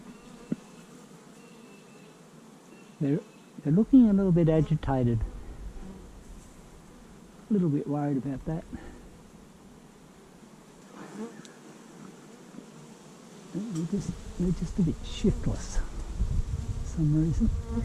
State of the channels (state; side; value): identical; both; correlation 1.00